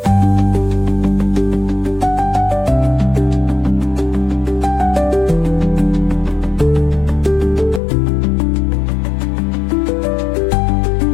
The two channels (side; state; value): right; drops out; at 7.8 s